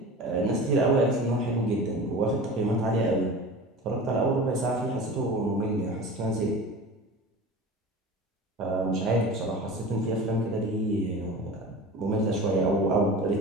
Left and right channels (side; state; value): both; normal; correlation 0.35